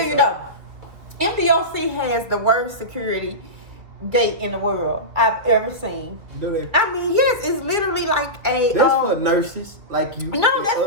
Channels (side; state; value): left; late; 2.3 ms